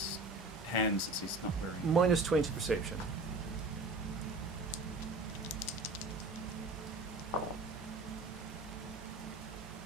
hands since he's not wearing. Minus 20 perception.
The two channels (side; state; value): left; quieter; 3.0 dB